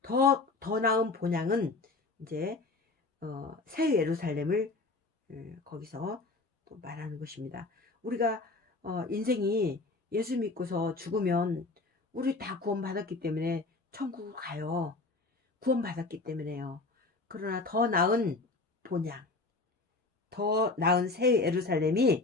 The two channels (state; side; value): quieter; right; 3.5 dB